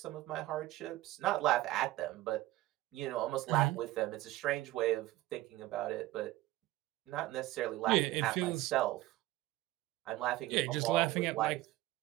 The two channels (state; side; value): quieter; left; 17.1 dB